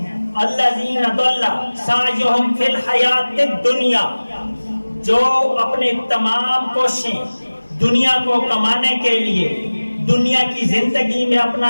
الذین ضل سعیہم فی الحیات الدنیا، جو اپنے تمام کوششیں دنیا کو کمانے کے لیے، دنیا کی زندگی میں اپنا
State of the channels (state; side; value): inverted; both; correlation -1.00